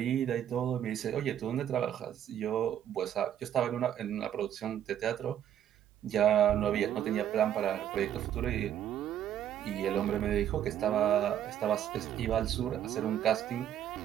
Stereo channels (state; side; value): quieter; left; 10.4 dB